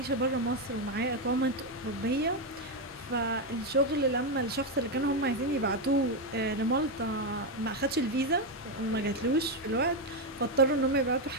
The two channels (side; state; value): both; normal; correlation 0.06